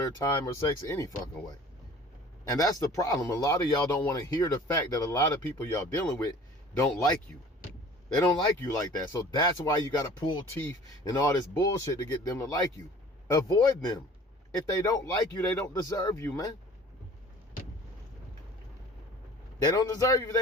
time or sex any fucking way. And that's the problem. A lot of y'all don't want to hear the fact that a lot of people y'all dealing with don't like you. They don't like you like that. So that's why you got to pull teeth and all this bullshit to get them to like you. Avoid them. If they don't like you, they don't deserve you, man. They don't deserve you if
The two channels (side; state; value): both; normal; correlation 0.46